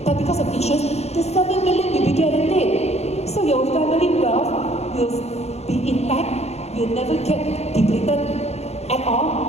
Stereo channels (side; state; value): right; late; 0.31 ms